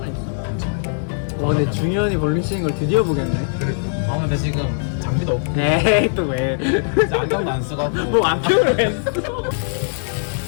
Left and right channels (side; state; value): right; silent; digital silence